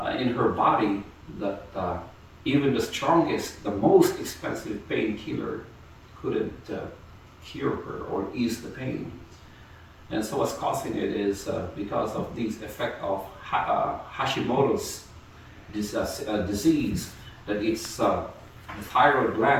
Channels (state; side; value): identical; both; correlation 1.00